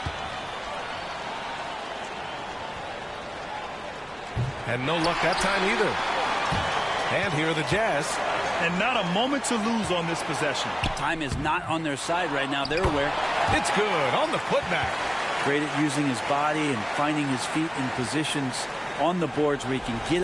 And no luck that time either. And here are the Jazz. And not a moment to lose on this possession. Time is not on their side right now. They're aware. It's good on the putback. Great at using his body and finding his feet in positions on the boards where he can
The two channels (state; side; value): identical; both; correlation 1.00